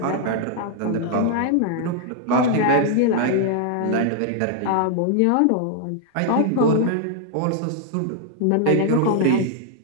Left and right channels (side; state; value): both; different; correlation 0.00